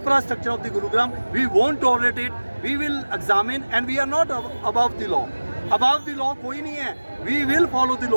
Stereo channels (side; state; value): both; inverted; correlation -1.00